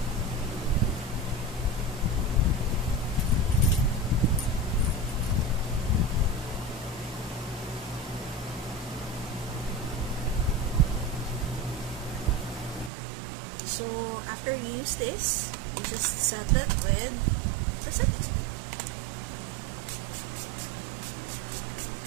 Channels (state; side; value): drops out; left; at 12.9 s